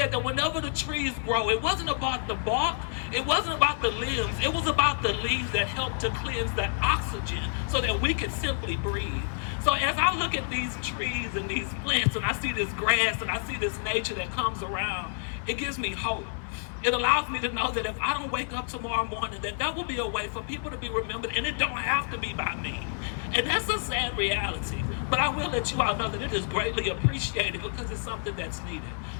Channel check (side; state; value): right; silent; 55 dB below the other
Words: that whenever the trees grow, it wasn't about the bark, it wasn't about the limbs, it was about the leaves that helped to cleanse the oxygen so that we could simply breathe. So as I look at these trees and these plants and I see this grass and I see this nature that comes around, it gives me hope. It allows me to know that if I don't wake up tomorrow morning, that will be a way for people to be remembered, and it don't have to be by me. And that's a sad reality. But I will let you all know that it is greatly appreciated because it's something that's needed.